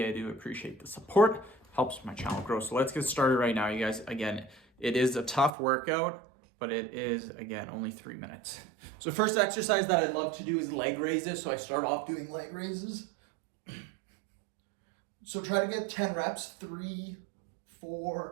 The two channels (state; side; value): drops out; left; at 5.5 s